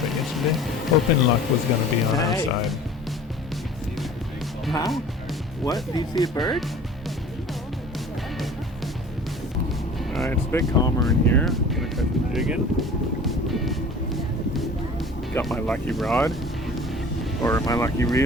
yesterday. Hoping luck was going to be on our side. Huh? What? Do you see a bird? Alright, it's a bit calmer in here. I'm going to cut the jig in. Got my lucky rod. Or my lucky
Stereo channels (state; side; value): normal; both; correlation 0.44